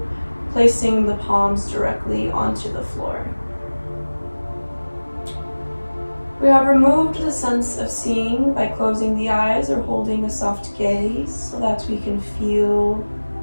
placing the palms directly onto the floor. We have removed the sense of seeing by closing the eyes or holding a soft gaze so that we can feel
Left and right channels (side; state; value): both; inverted; correlation -1.00